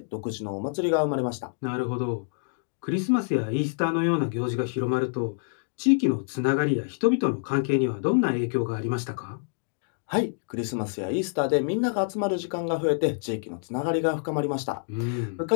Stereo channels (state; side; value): silent; right; digital silence